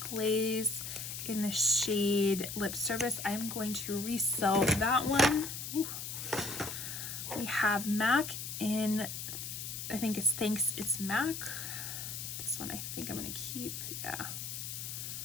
in the shade Lip Service. I'm going to resell that one. Ooh. We have MAC in, I think it's Thanks It's MAC. This one I think I'm gonna keep. Yeah,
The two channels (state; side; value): noise; left; hiss, 6 dB below the sound